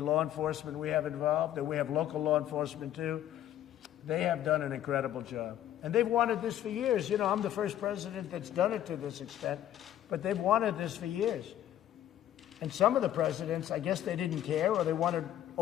enforcement we have involved, and we have local law enforcement too, they have done an incredible job. And they've wanted this for years. You know, I'm the first president that's done it to this extent, but they've wanted this for years. And some of the presidents, I guess they didn't care, or they wanted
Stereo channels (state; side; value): quieter; right; 11.9 dB